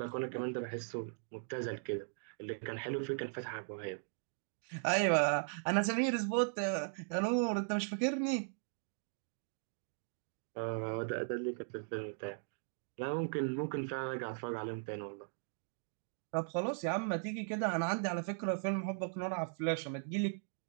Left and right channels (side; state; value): left; silent; digital silence